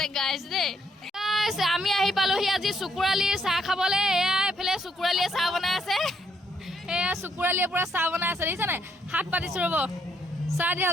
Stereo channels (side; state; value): both; normal; correlation 0.72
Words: গাইছ দেই আমি আহি পালোহি আজি চকুৰালিৰ চাহ খাবলৈ এয়া এইফালে চকুৰালিয়ে চাহ বনাই আছে এয়া চকুৰালিয়ে পুৰা চাহ বনাই আছে দেখিছানে হাত পাতিছো ৰ'ব চাহ